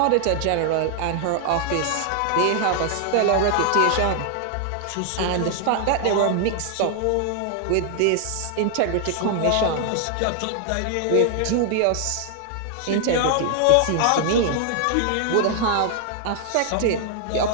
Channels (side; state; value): both; different; correlation 0.00